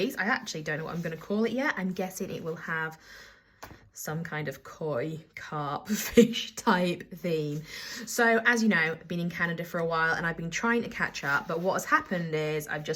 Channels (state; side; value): identical; both; correlation 1.00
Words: I actually don't know what I'm going to call it yet. I'm guessing it will have some kind of koi, carp, fish type theme. So as you know, I've been in Canada for a while and I've been trying to catch up. But what has happened is I've